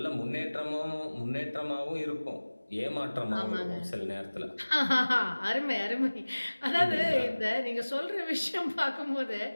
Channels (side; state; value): both; inverted; correlation -1.00